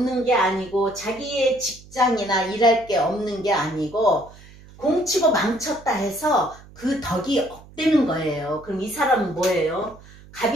게 아니고, 자기의 직장이나 일할 게 없는 게 아니고, 공치고 망쳤다 해서 그 덕이 업되는 거예요. 그럼 이 사람은 뭐예요?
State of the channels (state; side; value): noise; right; hum, 22 dB below the sound